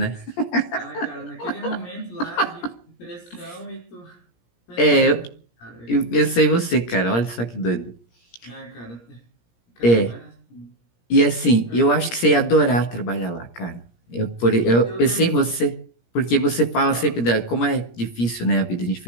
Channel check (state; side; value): late; right; 17 ms